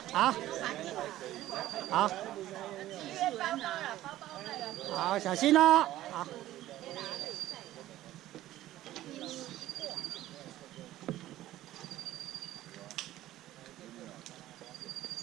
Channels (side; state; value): left; quieter; 14.6 dB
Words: 好，小心哦，好。